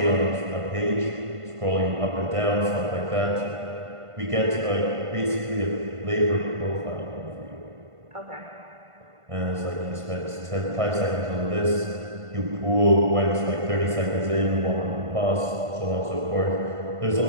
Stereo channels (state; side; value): late; left; 1.5 ms